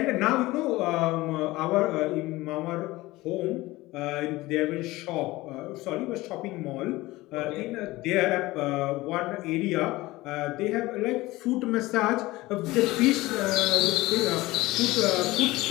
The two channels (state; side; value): quieter; right; 19.4 dB